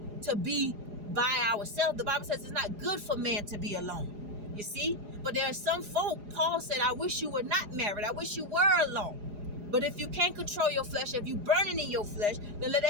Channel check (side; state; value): left; late; 4.8 ms